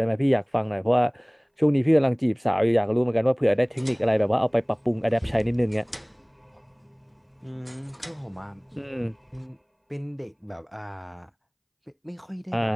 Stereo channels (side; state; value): both; identical; correlation 1.00